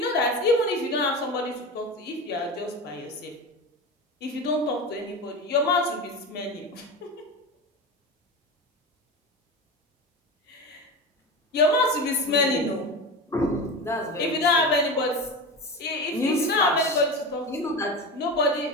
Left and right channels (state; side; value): normal; both; correlation 0.25